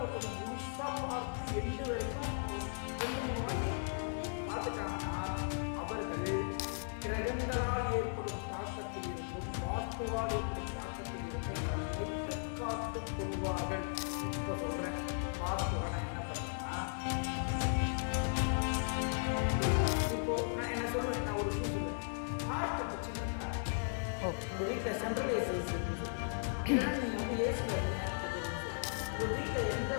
ஒருத்தவங்க முழுசாக பார்த்து எண்டு வரைக்கும் அவங்க 2-3 வாட்டி பார்த்துட்டாங்கன்னா, அவர்கள் கிரகங்களால் ஏற்படும் தாக்கத்தில் இருந்தும் வாஸ்துவால் ஏற்படும் தாக்கத்தில் இருந்தும் தன்னை தற்காத்து கொள்வார்கள். இப்போ சொல்கிறேன், வாஸ்துவில் நான் என்ன பண்ணுறேன்னா, இப்போ நான் என்ன சொல்லுவேன், நான் ஒரு விஷயம் சொல்லுவேன். ஹார்ட் பிரச்சனை இருக்கா, உங்கள் வீட்டில் சென்ட்ரலைஸ் ஏசி இருக்குன்னு சொல்லுவேன். இல்லைன்னா நீங்கள் ஏசியில் அதிக நேரத்துக்கு வரும்னு சொல்லுவேன். உங்கள் வீட்டில்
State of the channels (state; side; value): silent; right; digital silence